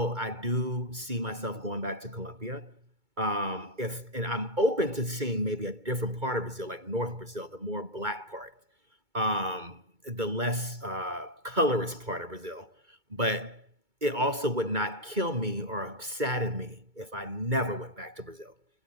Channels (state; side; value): late; left; 2.2 ms